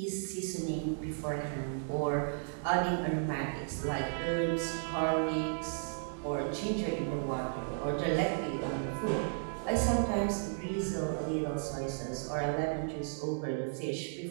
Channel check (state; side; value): silent; left; digital silence